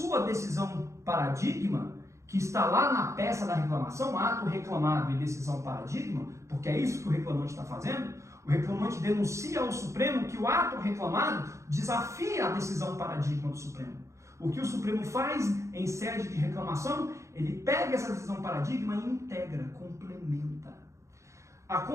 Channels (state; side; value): late; left; 0.14 ms